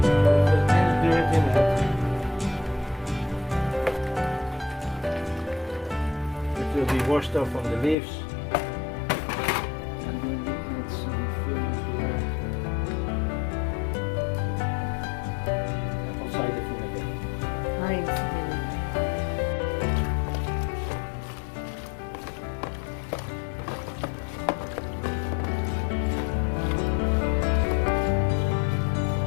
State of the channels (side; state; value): right; drops out; at 8.0 s